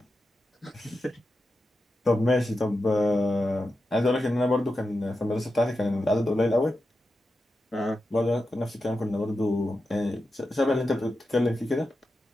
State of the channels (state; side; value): normal; both; correlation 0.90